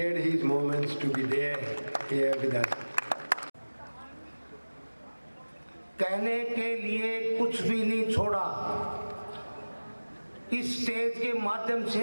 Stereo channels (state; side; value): inverted; both; correlation -1.00